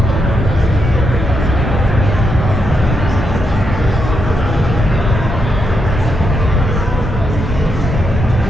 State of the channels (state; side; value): normal; both; correlation 0.81